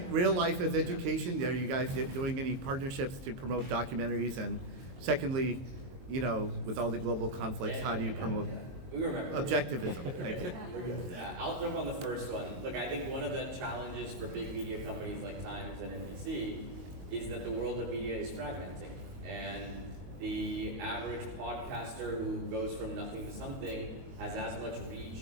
real life as education, are you guys doing any partnerships to promote documentaries? And secondly, with all the global conflicts, how do you promote objectivism? Thank you. I'll jump on the first one. Look, I think one of the challenges for big media companies like Times and NBC is that the world of media is fragmenting. And the average podcaster who goes from nothing to something has as much reach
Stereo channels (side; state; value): left; late; 23 ms